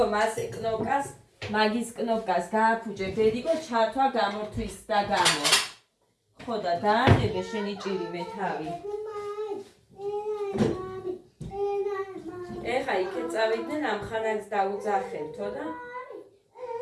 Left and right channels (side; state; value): both; identical; correlation 1.00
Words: მასე კნოპკას, მაგის კნოპკას გააფუჭე ბედიკო ჩართვა გამორთვის და გამო. ხო და დაანებე შენი ჭირივე თავი. ეხა იქეთ წავიდნენ ამ ხანას დაუძახებთო და